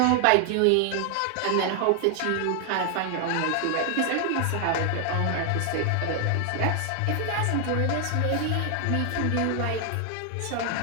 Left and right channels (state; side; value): different; both; correlation 0.00